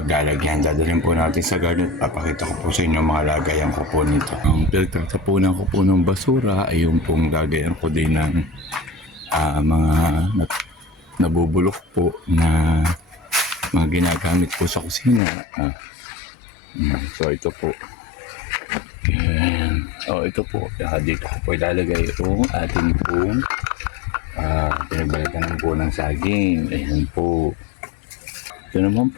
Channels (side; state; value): right; drops out; at 15.2 s